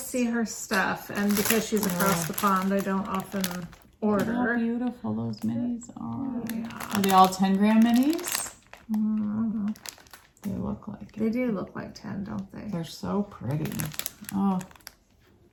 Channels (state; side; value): identical; both; correlation 1.00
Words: see her stuff, and because she's across the pond, I don't often order. How beautiful those minis are. Yeah. Are they all 10-gram minis? Mm-hmm. They look like it. They do look like 10, don't they? They're so pretty. Oh,